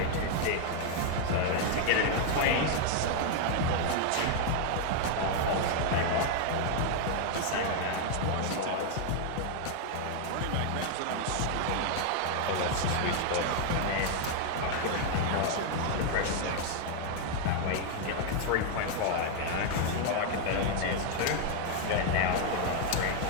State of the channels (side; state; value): both; different; correlation 0.00